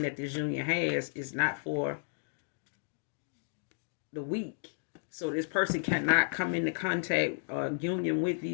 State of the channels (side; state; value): right; silent; digital silence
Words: that this union has is not for the weak. So this person cannot come into contact or union with